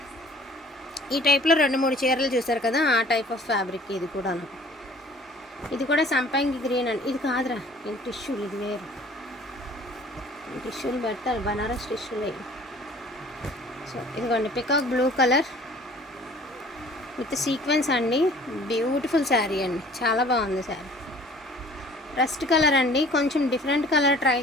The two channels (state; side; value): normal; both; correlation 0.51